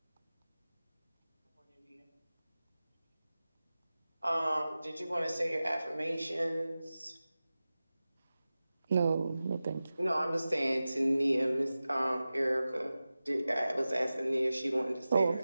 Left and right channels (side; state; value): both; inverted; correlation -0.95